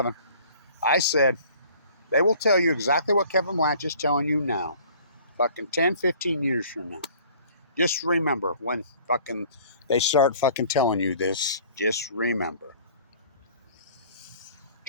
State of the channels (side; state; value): both; inverted; correlation -0.52